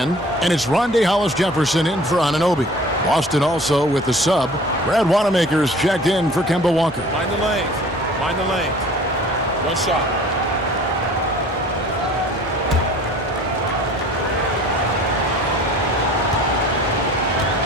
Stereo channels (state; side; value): normal; both; correlation 0.47